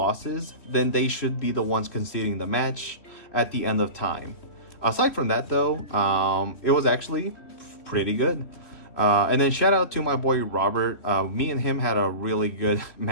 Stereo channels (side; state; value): right; late; 3.2 ms